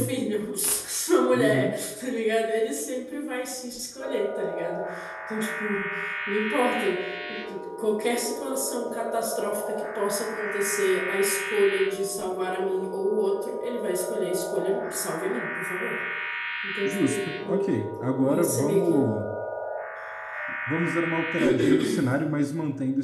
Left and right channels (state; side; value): identical; both; correlation 1.00